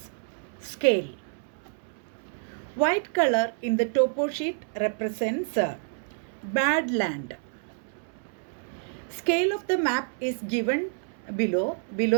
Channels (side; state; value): left; silent; 59 dB below the other